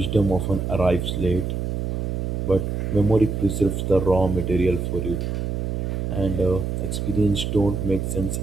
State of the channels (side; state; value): right; noise; hum, 2 dB below the sound